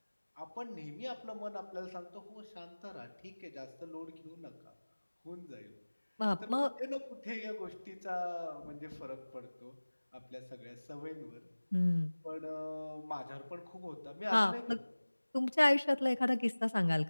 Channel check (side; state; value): both; inverted; correlation -1.00